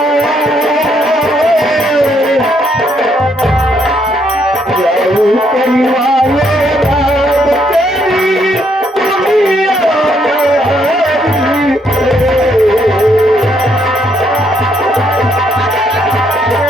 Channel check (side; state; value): both; normal; correlation 0.72